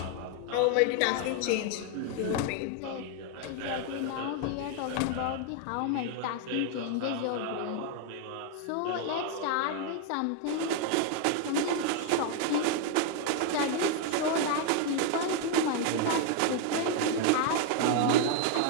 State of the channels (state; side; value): different; both; correlation 0.01